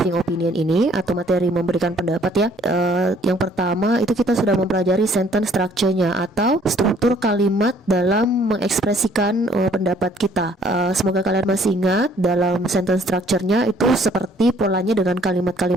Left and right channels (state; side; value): normal; both; correlation 0.60